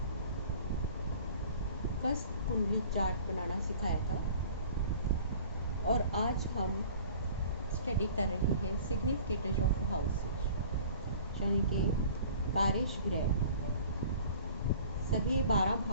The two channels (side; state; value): both; inverted; correlation -0.47